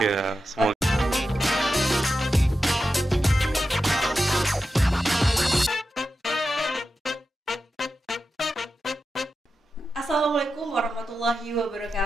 Ya, semoga. Assalamualaikum warahmatullahi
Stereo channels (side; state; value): both; normal; correlation 0.91